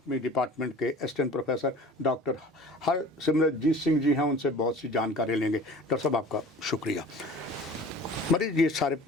डिपार्टमेंट के assistant professor doctor हरसिमरतजीत Singh ji हैं, उनसे बहुत सी जानकारी लेंगे। डॉक्टर साहब आपका शुक्रिया। मरीज ये सारे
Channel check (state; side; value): normal; both; correlation 0.43